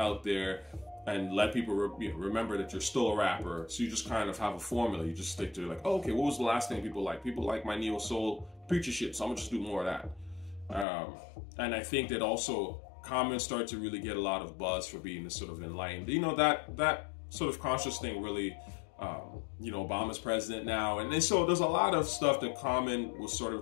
there and let people remember that you're still a rapper. So you just kind of have a formula. You just stick to like, oh, okay, what was the last thing people like? People like my neo-soul preacher shit, so I'm gonna just do more of that. And I think that also Common started to really get a lot of buzz for being this sort of enlightened. You know, that sort of conscious thing really, you know, Obama's president now. And so there's a lot of stuff that Common was sort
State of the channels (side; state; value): right; drops out; at 10.9 s